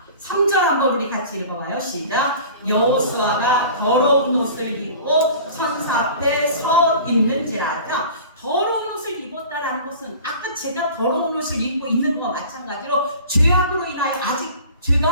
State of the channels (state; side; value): inverted; both; correlation -0.42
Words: 3절 한번 우리 같이 읽어봐요. 시작. 여호수아가 더러운 옷을 입고 천사 앞에 서 있는지라. 자, 더러운 옷을 입었다라는 것은 아까 제가 더러운 옷을 입고 있는 것과 마찬가지로 죄악으로 인하여 아직